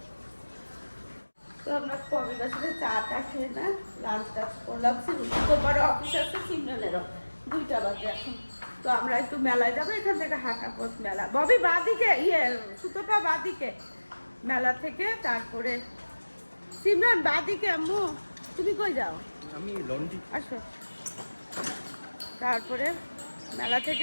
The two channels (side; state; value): both; inverted; correlation -1.00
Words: তো আমরা কবিতার সাথে চাটা খেয়ে না লাঞ্চ টাচ করলাম। তোমার অফিস আছে, সিমরানেরও 2টা বাজে এখন। তো আমরা একটু মেলায় যাবো, এখান থেকে হাঁটা পথ মেলা। ববি বাদিকে, সুতোপা বাদিকে মেলা থেকে, তারপরে সিমরান বাদিকে। আম্মু তুমি কই যাও? আমি লন্ডি। আসো। তারপরে মেলা থেকে